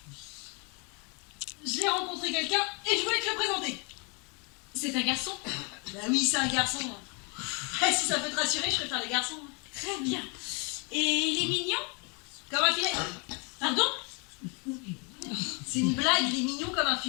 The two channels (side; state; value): right; quieter; 33.3 dB